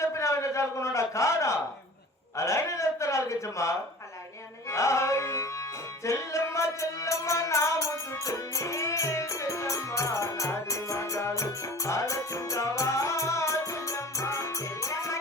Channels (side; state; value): both; normal; correlation 0.41